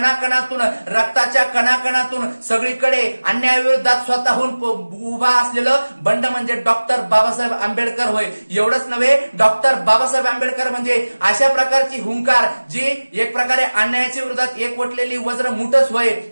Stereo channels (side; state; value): both; inverted; correlation -1.00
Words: रक्ताच्या कणाकणातून सगळीकडे अन्यायाविरोधात स्वतःहून उभा असलेलं बंड म्हणजे डॉक्टर बाबासाहेब आंबेडकर होय. एवढंच नव्हे, डॉक्टर बाबासाहेब आंबेडकर म्हणजे अशा प्रकारची हुंकार जी एक प्रकारे अन्यायाच्या विरोधात एकवटलेली वज्र मुठच होय.